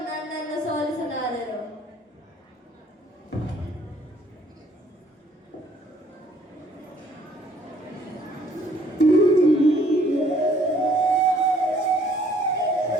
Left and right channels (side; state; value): both; normal; correlation 0.61